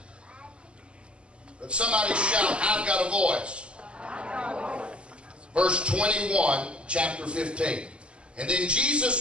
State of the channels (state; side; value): late; left; 0.053 ms